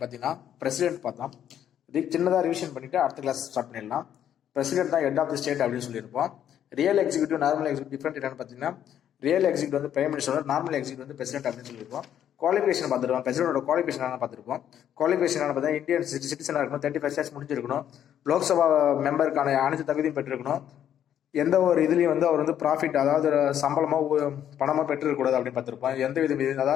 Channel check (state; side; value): quieter; right; 10.1 dB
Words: பார்த்தீங்கன்னா பிரசிடென்ட் பார்த்தோம். சின்னதாக ரிவிஷன் பண்ணிட்டு அடுத்த கிளாஸ் ஸ்டார்ட் பண்ணிடலாம். பிரசிடென்ட் தான் ஹெட் ஆஃப் தி ஸ்டேட் அப்படின்னு சொல்லியிருப்போம். Real executive normal executive different என்னன்னு பார்த்தீங்கன்னா ரியல் எக்ஸிக்யூட்டிவ் வந்து பிரைம் மினிஸ்டர், நார்மல் எக்ஸிக்யூட்டிவ் வந்து பிரசிடென்ட் அப்படின்னு சொல்லியிருப்போம். குவாலிஃபிகேஷன் பார்த்துருவோம். பிரசிடென்டோட குவாலிஃபிகேஷன் என்ன பார்த்துருப்போம். குவாலிஃபிகேஷன் பார்த்தீங்கன்னா இந்தியன் சிட்டிசனாக இருக்கணும், 35 இயர்ஸ் முடிஞ்சிருக்கணும், லோக்சபா மெம்பருக்கான அனைத்து தகுதியும் பெற்றிருக்கணும், எந்த ஒரு இதுலையும் வந்து அவர் வந்து ப்ராஃபிட் அதாவது சம்பளமோ பணமோ பெற்றுக்கூடாது அப்படின்னு பார்த்துருப்போம். எந்த விதம்